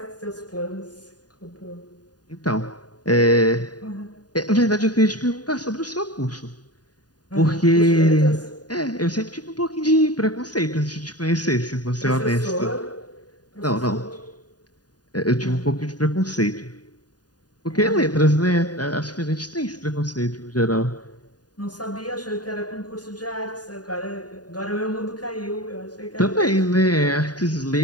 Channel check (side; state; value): right; late; 0.69 ms